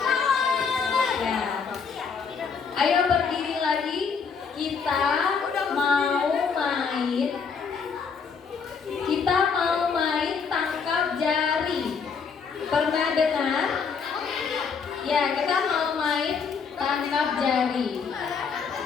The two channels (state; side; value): quieter; right; 5.8 dB